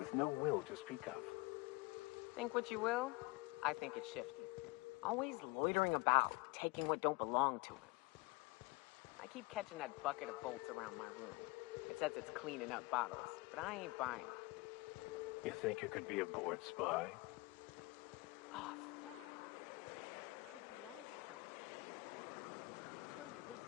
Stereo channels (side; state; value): right; quieter; 24.4 dB